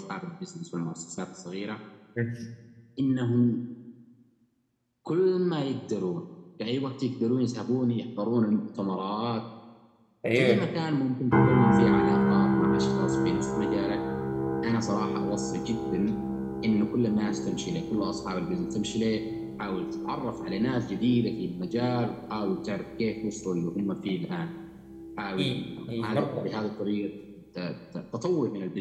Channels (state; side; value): identical; both; correlation 1.00